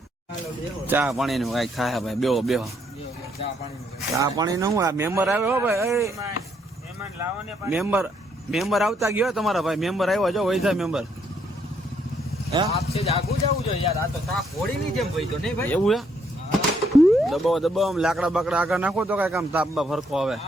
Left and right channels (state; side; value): normal; both; correlation 0.72